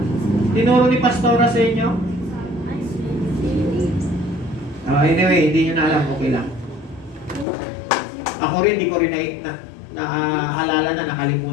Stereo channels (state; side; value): drops out; right; at 7.5 s